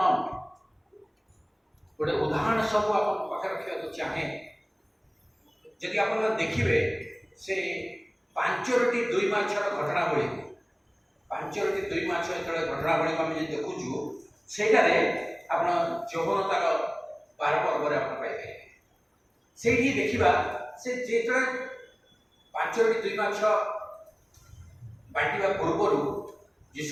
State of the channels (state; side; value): identical; both; correlation 1.00